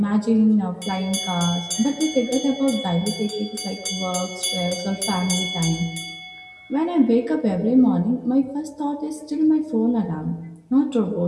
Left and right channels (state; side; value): identical; both; correlation 1.00